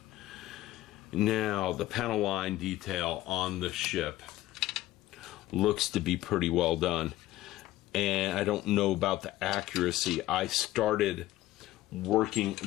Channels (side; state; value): right; quieter; 15.5 dB